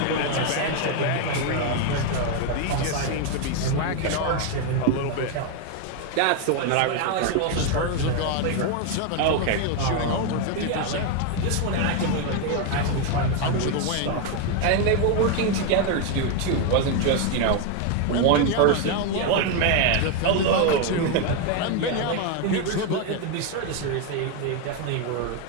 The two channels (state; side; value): different; both; correlation 0.01